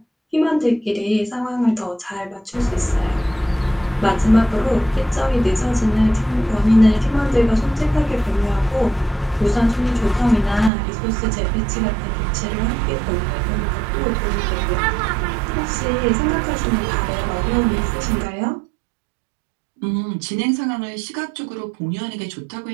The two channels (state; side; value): drops out; left; at 10.7 s